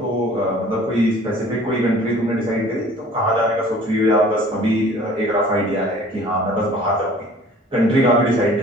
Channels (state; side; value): normal; both; correlation 0.49